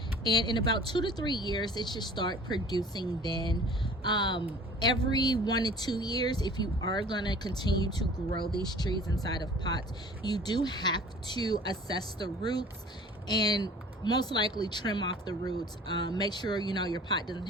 and in about 2 to 3 years it should start producing. Then every 1 to 2 years, if you are going to continue to grow these trees inside of pots, you do have to assess the roots and most likely trim off the roots. Make sure your pot doesn't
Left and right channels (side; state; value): both; normal; correlation 0.47